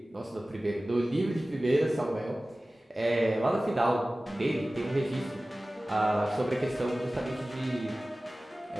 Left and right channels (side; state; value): both; normal; correlation 0.97